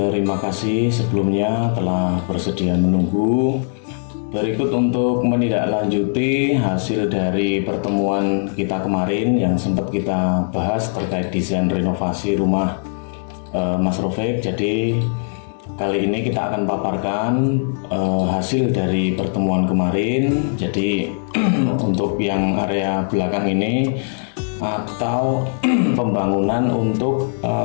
kasih sebelumnya telah bersedia menunggu. Berikut untuk menindaklanjuti hasil dari pertemuan kita kemarin yang sempat kita bahas terkait desain renovasi rumah Mas Rofik. Jadi kali ini kita akan paparkan hasil dari pertemuan kemarin. Jadi untuk yang area belakang ini atau pembangunan untuk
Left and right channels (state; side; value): silent; right; 66 dB below the other